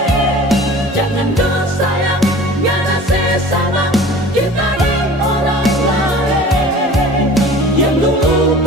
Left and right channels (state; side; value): normal; both; correlation 0.42